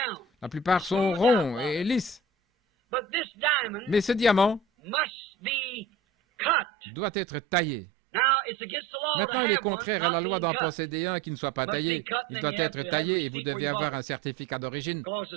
La plupart sont ronds et lisses. Mais ce diamant doit être taillé. Maintenant, il est contraire à la loi d'en posséder un qui ne soit pas taillé. Il doit être taillé et vous devez avoir un certificat d'origine,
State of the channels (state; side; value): drops out; left; at 6.6 s